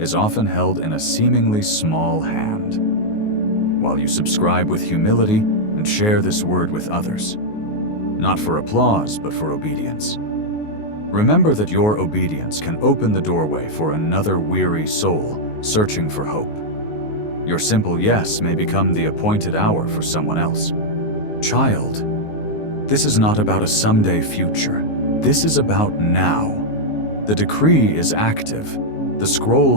often held in a seemingly small hand. While you subscribe with humility and share this word with others, not for applause, but for obedience. Remember that your obedience can open the doorway for another weary soul searching for hope. Your simple yes may become the appointed hour for someone else. Child, this is not about a someday future. This is about now. The decree is active. The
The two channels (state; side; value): late; right; 19 ms